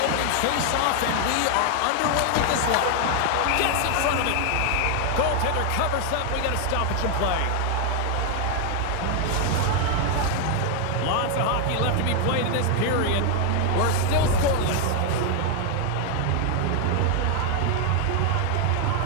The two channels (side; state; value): both; different; correlation 0.00